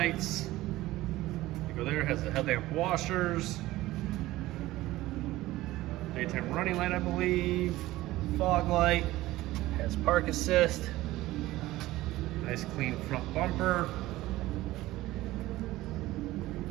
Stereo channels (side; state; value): left; quieter; 17.2 dB